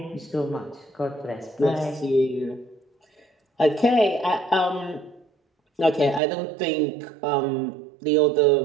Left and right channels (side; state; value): left; drops out; at 6.2 s